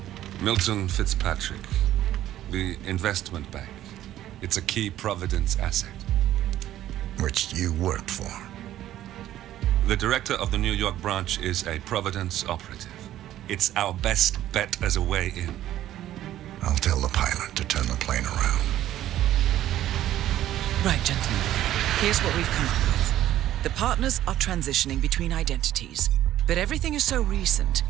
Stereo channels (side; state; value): left; quieter; 12.9 dB